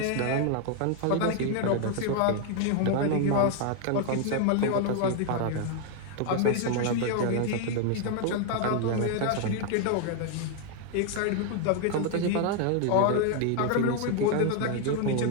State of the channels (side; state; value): both; different; correlation 0.00